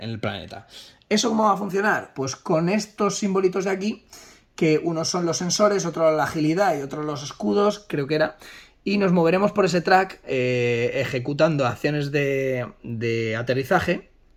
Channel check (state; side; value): identical; both; correlation 1.00